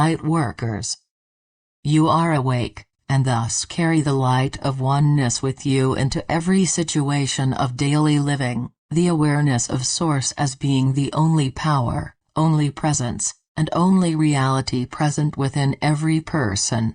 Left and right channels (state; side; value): identical; both; correlation 1.00